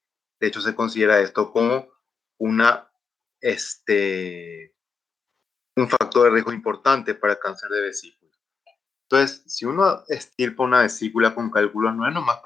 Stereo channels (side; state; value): right; quieter; 5.1 dB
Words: De hecho, se considera esto como una, un factor de riesgo importante para cáncer de vesícula. Entonces, si uno estirpa una vesícula con cálculos, no es nomás